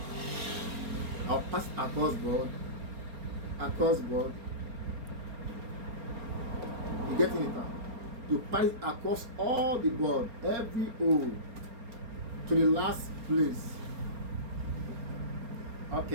I'll pass it across board. You getting it now? You pass it across all the board, every hole, to the last place.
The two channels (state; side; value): late; left; 4.3 ms